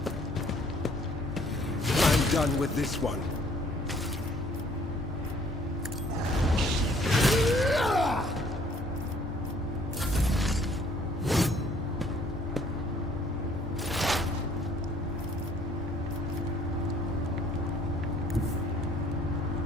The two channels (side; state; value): both; normal; correlation 0.59